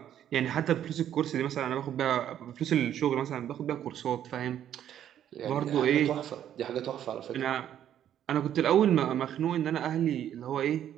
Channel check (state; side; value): quieter; left; 10.5 dB